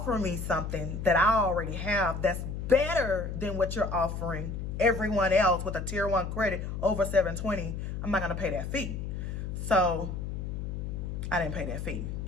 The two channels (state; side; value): noise; left; hum, 5 dB below the sound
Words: me something that I already have that's better than what you're offering everyone else with a tier 1 credit over 720, I'm not going to pay that fee. So I didn't pay that fee.